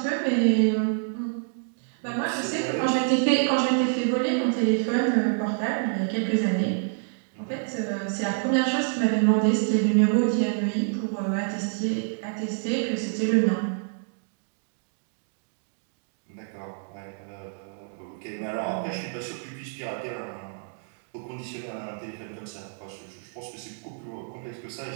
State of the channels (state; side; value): silent; left; digital silence